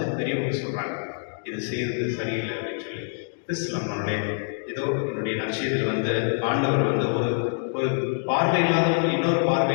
பெரியவங்க சொல்கிறாங்க இது செய்கிறது சரியில்லை அப்படின்னு சொல்லி. கிறிஸ்துவ நம்மளுடைய ஏதோ என்னுடைய நற்செய்தியில் வந்து ஆண்டவர் வந்து ஒரு பார்வை இல்லாதவங்க இன்னொரு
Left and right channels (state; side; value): silent; right; digital silence